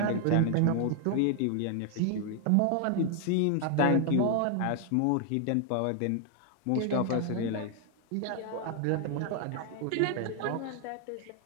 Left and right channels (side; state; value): both; different; correlation 0.00